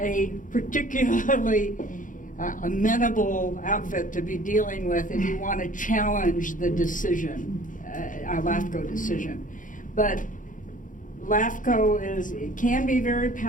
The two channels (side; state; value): right; late; 0.38 ms